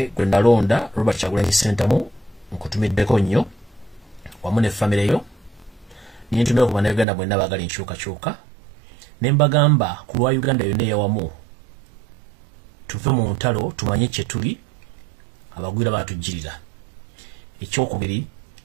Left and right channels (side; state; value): left; drops out; at 7.1 s